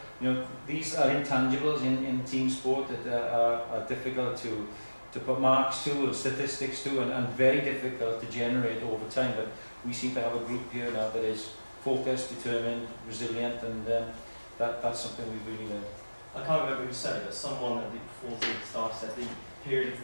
These are intangibles in team sport that are difficult to put marks to, or statistics to, and very difficult to generate over time. But we seem to have a group here now that is focused, determined, resilient, and that's something we've really learned. I can't remember who said it, but someone at the before the start said the period of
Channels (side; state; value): both; inverted; correlation -1.00